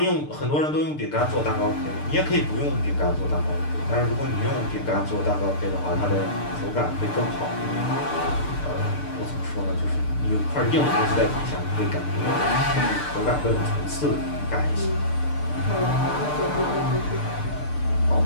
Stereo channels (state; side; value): late; right; 6.7 ms